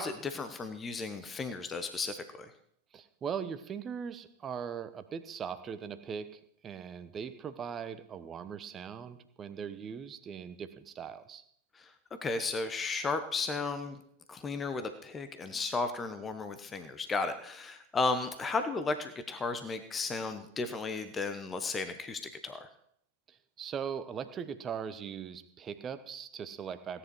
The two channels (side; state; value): both; normal; correlation 0.63